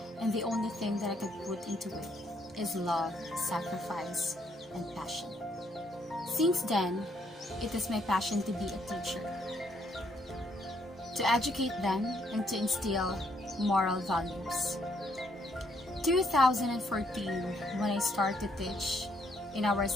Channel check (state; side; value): normal; both; correlation 0.71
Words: and the only thing that I could put into it is love, sacrifice, and passion. Since then, it is my passion to be a teacher, to educate them and to instill moral values. 2014, when I started to teach in our